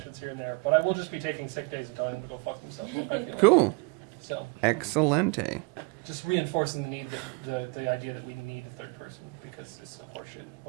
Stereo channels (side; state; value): left; quieter; 29.8 dB